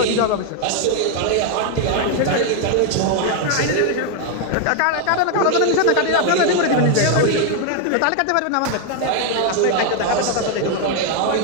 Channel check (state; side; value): different; both; correlation 0.00